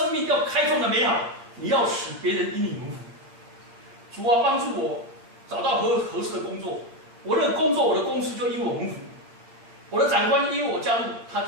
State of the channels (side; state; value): left; late; 8.7 ms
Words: 命要开创的美好，你要使别人因你蒙福。主啊，帮助我找到合适的工作，我的工作我的公司就因我蒙福，我的长官因为我加入，他就